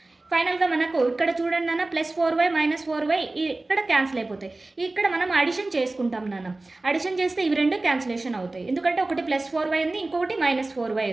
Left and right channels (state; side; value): quieter; left; 3.0 dB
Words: ఫైనల్గా మనకు ఇక్కడ చూడండి నాన్న ప్లస్ 4y మైనస్ 4y ఇక్కడ క్యాన్సిల్ అయిపోతాయి. ఇక్కడ మనం అడిషన్ చేసుకుంటాం నాన్న. అడిషన్ చేస్తే ఇవి రెండు క్యాన్సిలేషన్ అవుతాయి, ఎందుకంటే ఒకటి ప్లస్ 4y ఉంది, ఇంకొకటి మైనస్ 4y